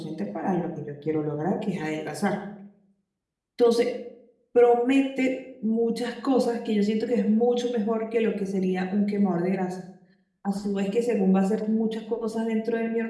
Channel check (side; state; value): both; identical; correlation 1.00